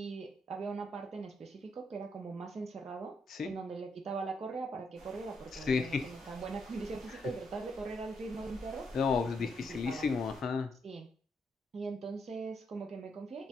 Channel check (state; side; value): normal; both; correlation 0.78